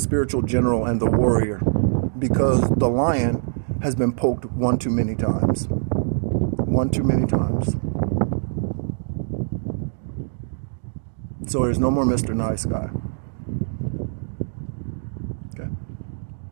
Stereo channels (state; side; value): silent; left; digital silence